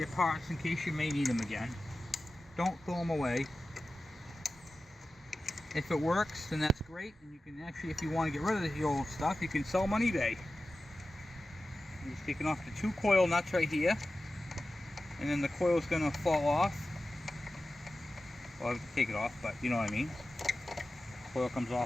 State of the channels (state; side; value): normal; both; correlation 0.94